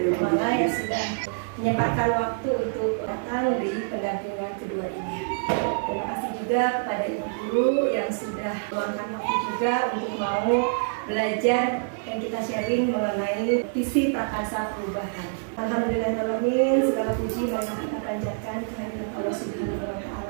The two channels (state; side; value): silent; left; digital silence